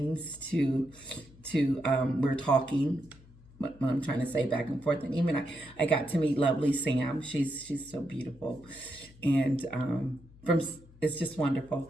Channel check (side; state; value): left; noise; hum, 24 dB below the sound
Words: to we're talking, what I'm trying to say back and forth. And even I got to meet lovely Sam. She's so beautiful. And it's just wonderful.